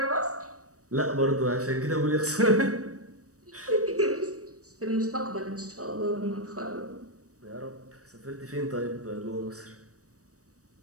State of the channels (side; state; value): left; late; 0.66 ms